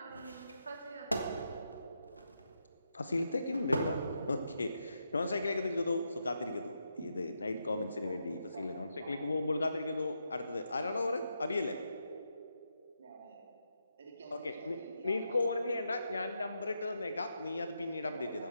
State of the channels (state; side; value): inverted; both; correlation -0.83